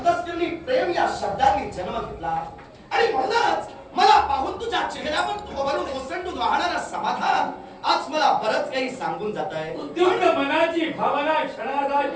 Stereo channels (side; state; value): both; identical; correlation 1.00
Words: प्रेम या शब्दांनी जन्म घेतला आणि म्हणूनच मला पाहून तुझ्या चेहऱ्यावर तुझ्यावरून ओसंडून वाहणारा समाधान आज मला बरंच काही सांगून जात आहे. उद्युक्त मनाची भावना क्षणार्धात